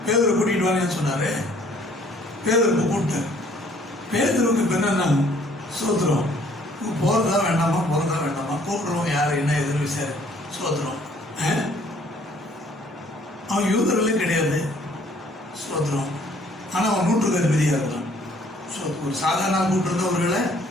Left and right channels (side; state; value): both; normal; correlation 0.60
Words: பேதரை கூட்டிட்டு வான்னு சொன்னாரு. பேதருக்கு கூப்பிட்டார். பேதருக்கு இப்ப என்னன்னா, சோத்திரம், போறதா வேண்டாமா, போறதா வேண்டாமா, கூப்பிடுறோம் யாரு என்ன எதிர்ப்பு விசாரி. சோத்திரம். அவன் யூதர்களே கிடையாது. சோத்திரம். ஆனா அவன் 100 அதிபதியா இருக்கான். ஒரு சாதாரண கூப்பிட்டு அவர்களை